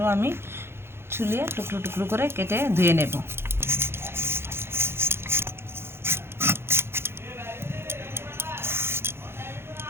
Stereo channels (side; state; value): left; late; 0.12 ms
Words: আমি ছুলিয়ে টুকরো টুকরো করে কেটে ধুয়ে নেব।